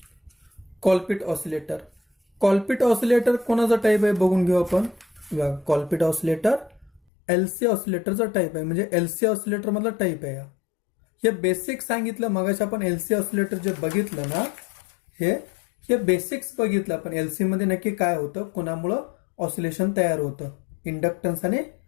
कॉलपिट ऑसिलेटर. कॉलपिट ऑसिलेटर कोणाचा टाईप आहे बघून घेऊ आपण. कॉलपिट ऑसिलेटर LC ऑसिलेटरचा टाईप आहे, म्हणजे LC ऑसिलेटर मधला टाईप आहे. हे बेसिक सांगितलं मगाशी आपण. LC ऑसिलेटर जे बघितलं ना, हे बेसिक्स बघितलं आपण. LC मध्ये नक्की काय होतं, कोणामुळं ऑसिलेशन तयार होतं, इंडक्टन्स आणि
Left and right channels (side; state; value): right; drops out; at 7.0 s